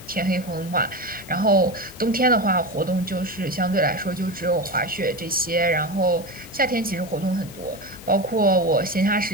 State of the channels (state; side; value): normal; both; correlation 0.21